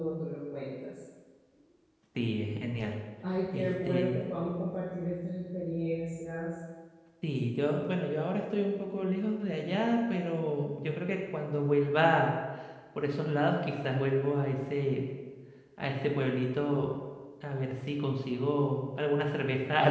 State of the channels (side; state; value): both; identical; correlation 1.00